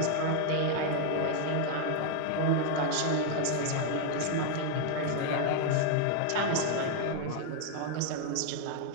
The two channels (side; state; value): both; different; correlation 0.00